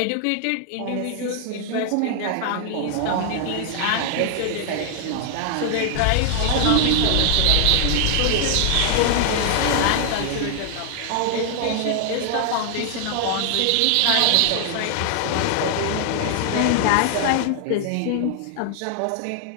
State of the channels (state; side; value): different; both; correlation 0.00